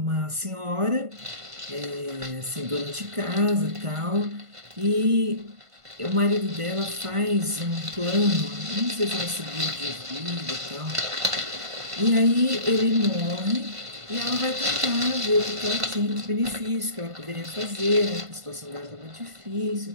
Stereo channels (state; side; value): late; left; 1.5 ms